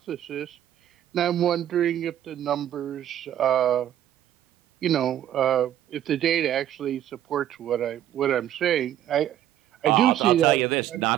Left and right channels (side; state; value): left; quieter; 11.5 dB